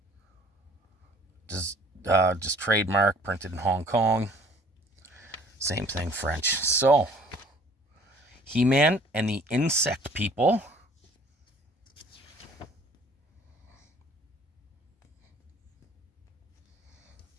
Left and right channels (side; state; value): both; normal; correlation 0.54